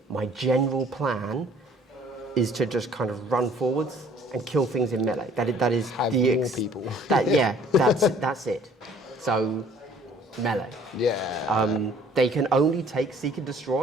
My general plan is to just kind of run forwards and kill things in melee. That is Have the more people. That's it. So, melee. Yeah. They can only take Seek and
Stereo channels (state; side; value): normal; both; correlation 0.56